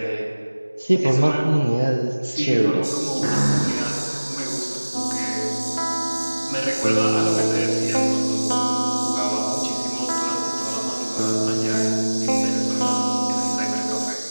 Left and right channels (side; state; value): both; inverted; correlation -1.00